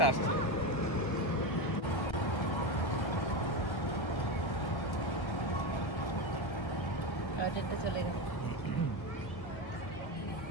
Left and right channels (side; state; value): right; late; 1.3 ms